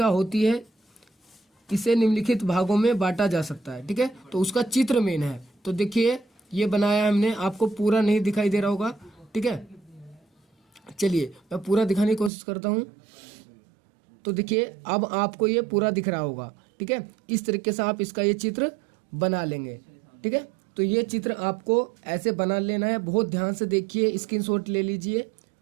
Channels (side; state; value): left; drops out; at 12.3 s